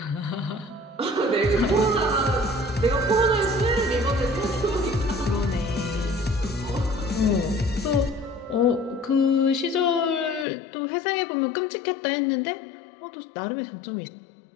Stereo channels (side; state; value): right; drops out; at 10.5 s